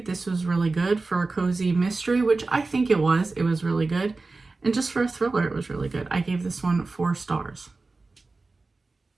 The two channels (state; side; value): quieter; left; 3.6 dB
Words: this was really good. For a cozy mystery, which I think it was really good. And just for a thriller, it was really good. I gave this one 4 stars.